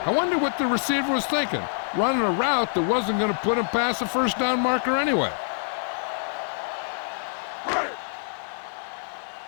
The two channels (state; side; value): silent; right; digital silence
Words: I wonder what the receiver was thinking, running a route that wasn't going to put him past the 1st down marker anyway.